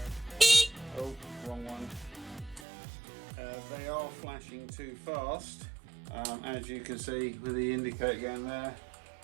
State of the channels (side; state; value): left; drops out; at 2.7 s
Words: wrong one. They are flashing too fast, as you can see with the indicator going there.